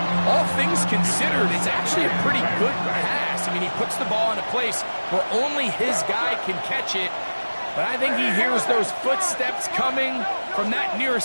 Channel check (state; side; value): inverted; both; correlation -1.00